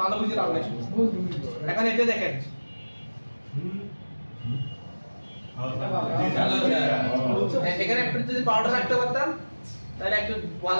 ভালো বুঝে লাভ নাই। এখন এটা দেখেন, এখানে একটু যদি পাউডার রাখতে পারতাম তাহলে একটু ভালো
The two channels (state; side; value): inverted; both; correlation -1.00